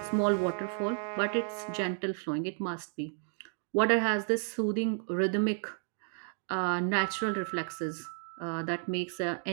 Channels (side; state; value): left; silent; 56 dB below the other